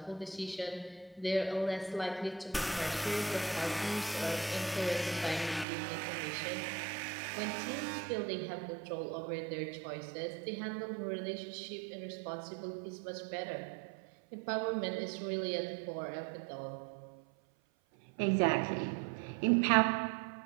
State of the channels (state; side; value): drops out; left; at 5.7 s